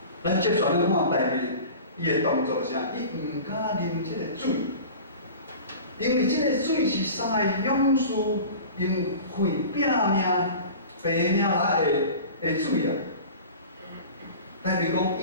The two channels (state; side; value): inverted; both; correlation -0.38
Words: 咱接续咱看代表伊的动作是啥？伊毋敢啉这个水。因为这个水是三个勇士用血拼命、白命来的水啊，代表讲